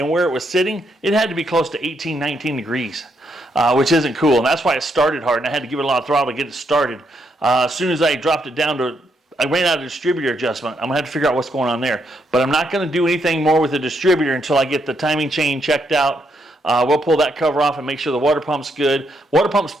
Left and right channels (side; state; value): both; normal; correlation 0.77